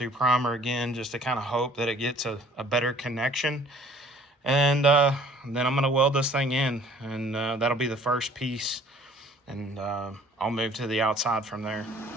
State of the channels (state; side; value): normal; both; correlation 0.54